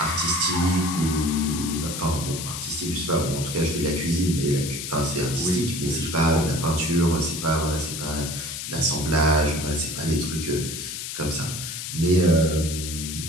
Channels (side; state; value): left; noise; hiss, 6 dB below the sound